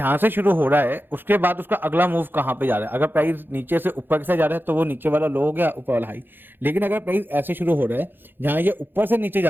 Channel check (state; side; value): late; left; 0.098 ms